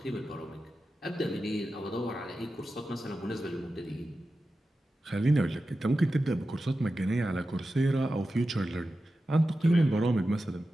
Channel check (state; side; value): normal; both; correlation 0.92